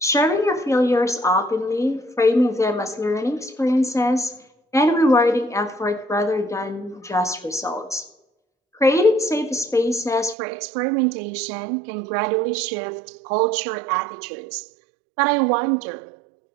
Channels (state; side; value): drops out; left; at 10.4 s